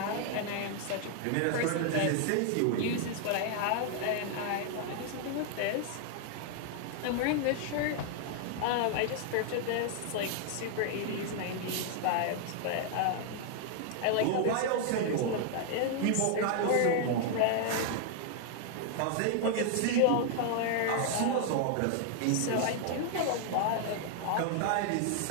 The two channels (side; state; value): both; different; correlation 0.00